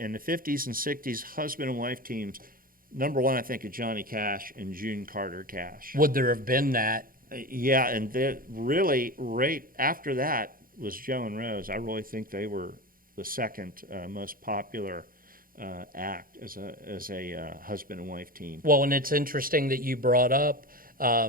the 50s and 60s husband and wife teams, number one, I think of Johnny Cash and June Carter Cash. Would there have been that? Yeah, and really right after that was Joe and Rose. I really think they were the second most popular act as a husband and wife team. Well, and it's interesting that you brought up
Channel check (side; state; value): left; late; 0.41 ms